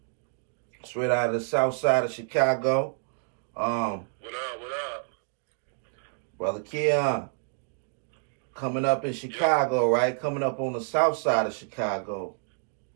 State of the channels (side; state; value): left; silent; 59 dB below the other